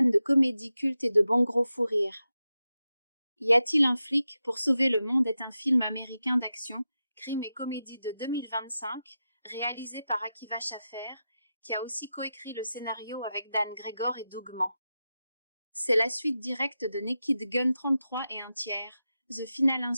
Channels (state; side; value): inverted; both; correlation -0.91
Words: de comédie culte et de bons gros fous rires. Y a-t-il un flic pour sauver le monde est un film américain d'action, crime et comédie de 2025, réalisé par Akiva Schaffer, qui a aussi coécrit le scénario avec Dan Gregor et Doug Mann. C'est la suite directe de Naked Gun 33 et un tiers, The Final